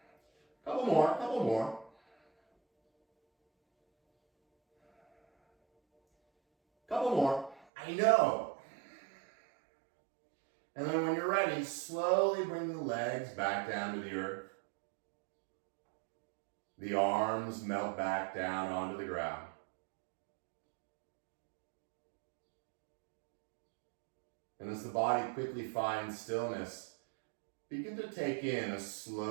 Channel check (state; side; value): drops out; left; at 7.6 s